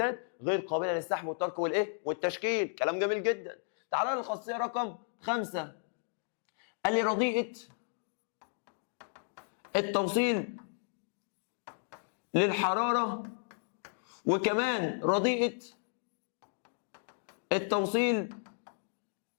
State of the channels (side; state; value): right; silent; digital silence